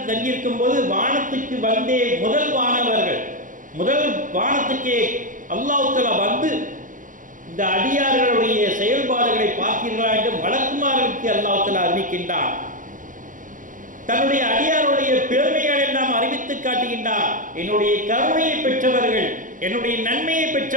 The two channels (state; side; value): late; left; 0.38 ms